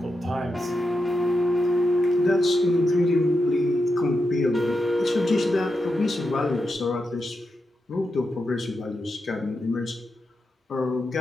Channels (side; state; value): both; normal; correlation 0.87